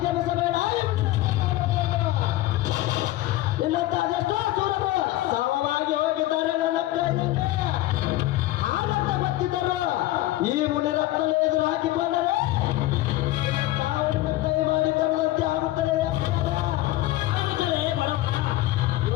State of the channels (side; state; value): right; quieter; 16.2 dB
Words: ಮಿಸಬೇಡ ಇನ್ನಂತ ಅದೆಷ್ಟೋ ಸೂರರು ಸಮವಾಗಿ ಹೋಗಿದ್ದಾರೆ ನನ್ನ ಕೈಯಲ್ಲಿ ಹಾಗಂತ ಗೊತ್ತಿದ್ದರು ಈ ಮುನಿರತ್ನ ಎದುರು ಹಾಕಿಕೊಂಡರೆ ಸಾವಿನ ಕೈ ಮಾಡಿ ಕರೆದಂತೆ ಆಗುತ್ತದೆ